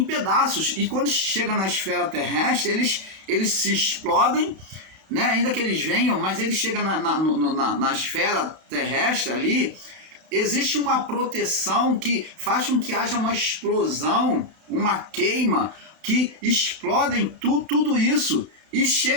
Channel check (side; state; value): left; late; 31 ms